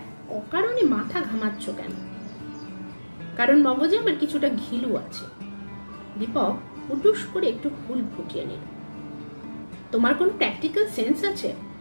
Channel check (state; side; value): inverted; both; correlation -1.00